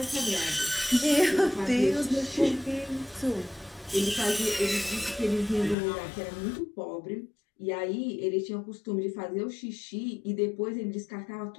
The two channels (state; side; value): drops out; right; at 5.8 s